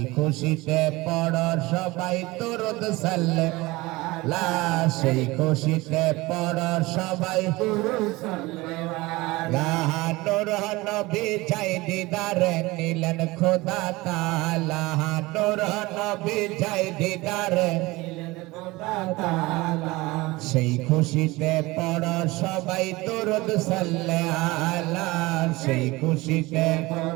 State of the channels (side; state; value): left; quieter; 21.3 dB